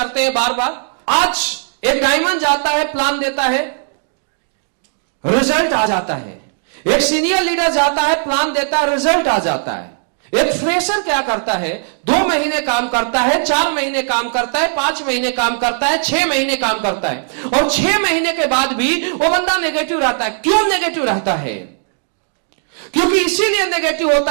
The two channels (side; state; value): left; silent; 67 dB below the other